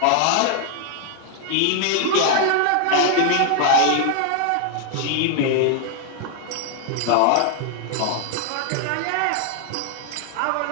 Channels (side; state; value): both; different; correlation 0.00